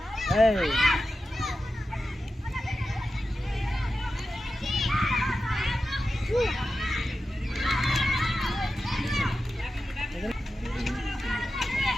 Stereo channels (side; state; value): both; normal; correlation 0.92